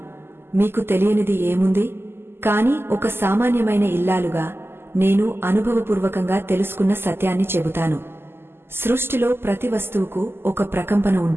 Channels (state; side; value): late; left; 0.11 ms